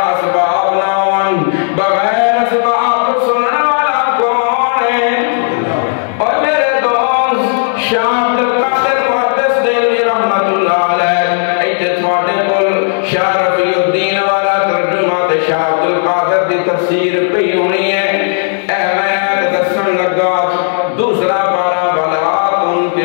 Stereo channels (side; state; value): right; silent; digital silence